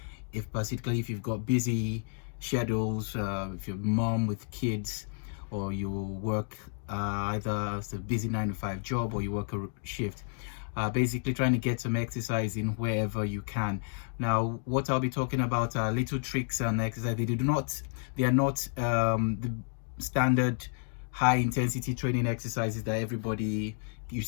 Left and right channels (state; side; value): silent; right; 57 dB below the other